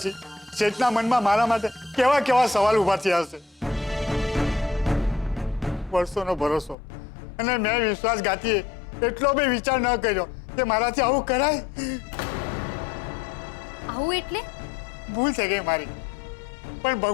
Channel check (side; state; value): right; drops out; at 6.8 s